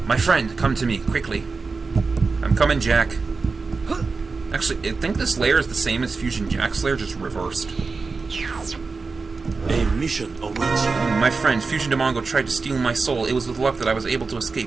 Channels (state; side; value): quieter; left; 4.3 dB